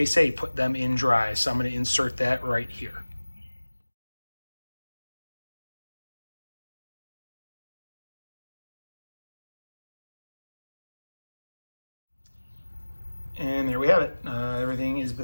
say put them in dry. So I'm going to insert that right here. And there we have it. Everything is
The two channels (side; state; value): both; inverted; correlation -1.00